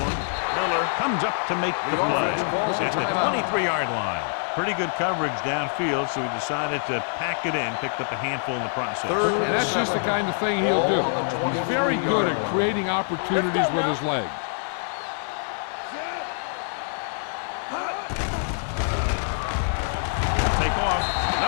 Miller comes up to make the play at the 23-yard line. Pretty good coverage downfield, so he decided to pack it in, picked up a handful in the process. And that's just the kind of thing he'll do. He's very good at creating opportunities with his legs. off.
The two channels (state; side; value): silent; right; 62 dB below the other